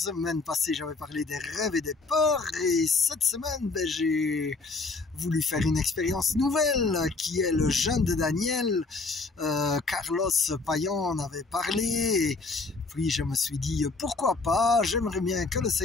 passée j'avais parlé des rêves et des peurs et cette semaine j'ai voulu faire une expérience nouvelle qui est le jeûne de Daniel. Carlos Payan en avait parlé et puis je me suis dit pourquoi pas, j'aimerais bien que le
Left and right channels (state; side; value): quieter; right; 3.7 dB